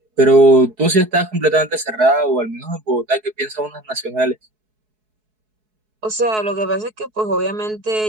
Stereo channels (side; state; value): left; late; 4.7 ms